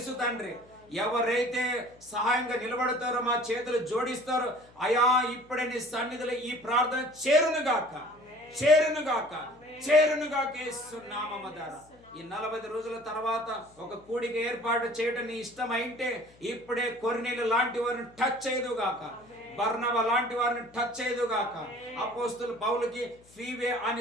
తండ్రి. ఎవరైతే సహాయంగా నిలబడతారో, మా చేతులు జోడిస్తారో, అయా ఇప్పుడే నీ సన్నిధిలో ఈ ప్రార్థన చేరునుగాక యేసు నామము ద్వారా. ఈ 40 రోజుల తర్వాత ఒక కూడిక ఏర్పాటు చేయడం నీ ఇష్టమైంటే ఇప్పుడే కొర్నేలు లాంటి వారిని టచ్ చేయదుగాక, బర్నబా లాంటి వారిని టచ్ చేయదుగాక. అపోస్తులు పౌలుకి ఫీవే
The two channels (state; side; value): noise; left; hum, 27 dB below the sound